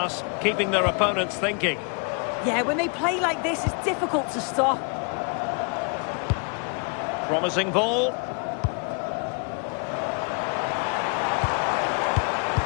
keeping their opponents thinking. Yeah, when they play like this, it's difficult to stop. Promising ball.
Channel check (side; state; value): right; quieter; 36.9 dB